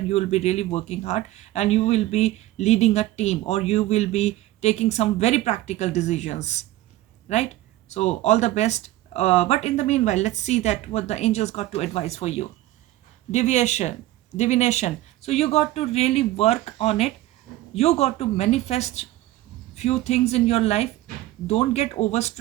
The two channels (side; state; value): left; quieter; 16.0 dB